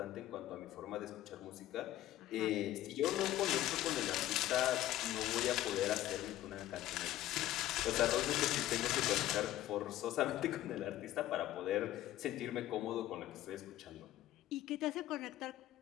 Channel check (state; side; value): quieter; right; 14.1 dB